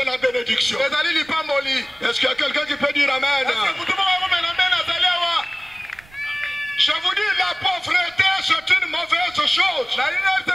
la bénédiction. Est-ce qu'il y a quelqu'un qui peut dire Amen? Je vous dis, la pauvreté, c'est une mauvaise chose.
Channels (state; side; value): noise; right; rumble, 27 dB below the sound